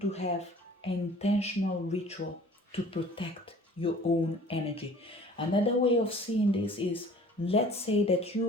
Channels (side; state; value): both; normal; correlation 0.49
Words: to have an intentional ritual to protect your own energy. Another way of seeing this is, let's say that